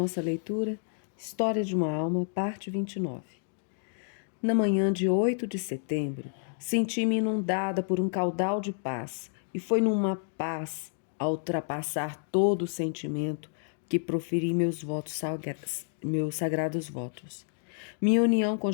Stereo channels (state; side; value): silent; right; digital silence